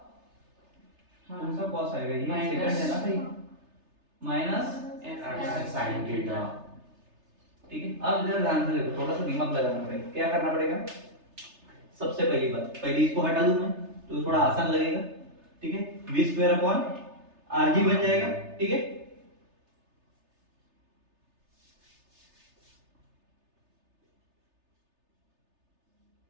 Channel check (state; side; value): late; left; 3.3 ms